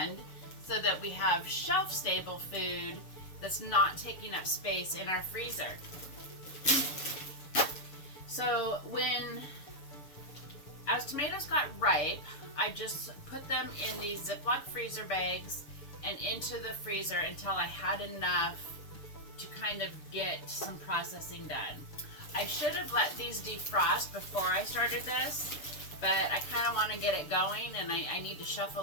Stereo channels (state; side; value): late; right; 6.9 ms